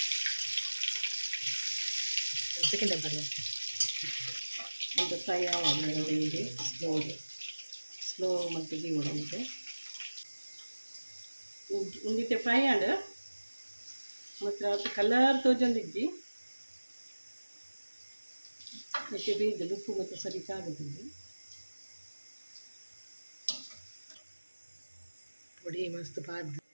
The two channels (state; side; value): inverted; both; correlation -1.00